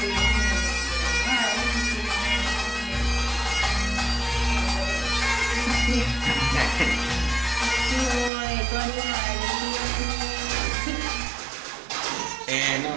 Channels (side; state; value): left; drops out; at 8.3 s